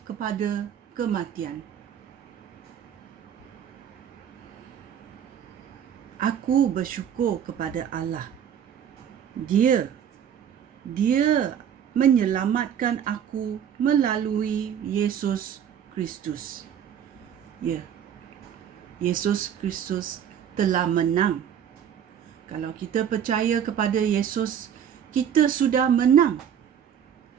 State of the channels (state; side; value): quieter; left; 8.9 dB